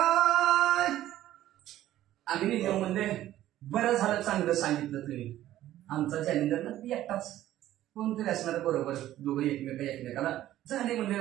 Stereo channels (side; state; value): left; quieter; 13.6 dB